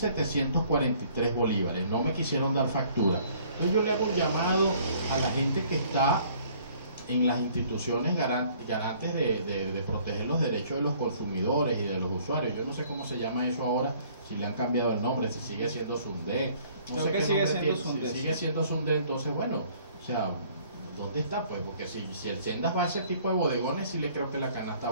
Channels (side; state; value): both; inverted; correlation -0.58